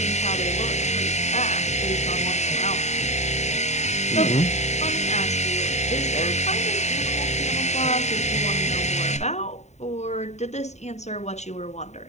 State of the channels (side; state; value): right; late; 0.33 ms